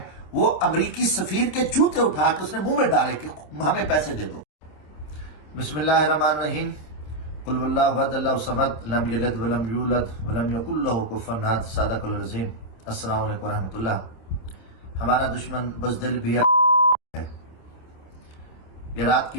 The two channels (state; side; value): late; right; 27 ms